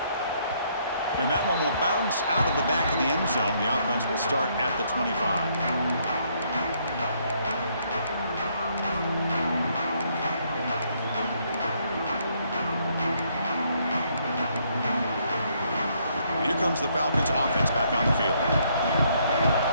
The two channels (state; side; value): inverted; both; correlation -0.70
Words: And that one will bounce out of the back of the end zone. The offense will start at the 25. And here comes the Falcons offense back on the field.